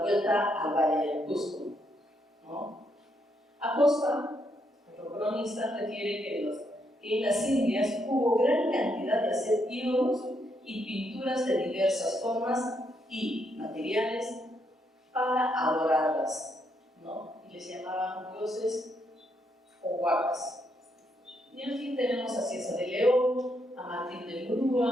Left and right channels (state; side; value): normal; both; correlation 0.76